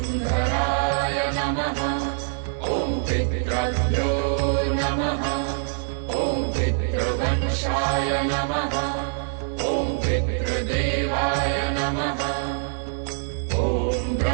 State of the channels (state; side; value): silent; left; digital silence